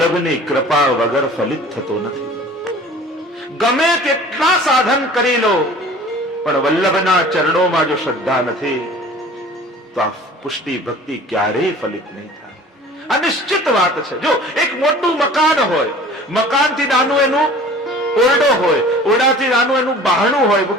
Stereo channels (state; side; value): normal; both; correlation 0.45